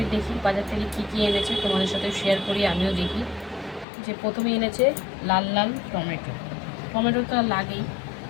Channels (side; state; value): right; drops out; at 3.9 s